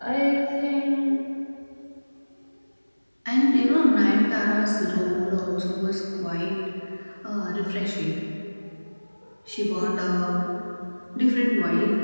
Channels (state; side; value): inverted; both; correlation -1.00